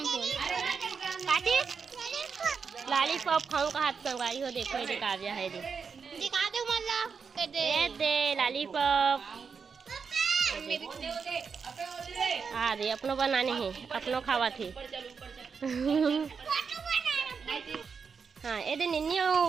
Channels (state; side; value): quieter; left; 5.8 dB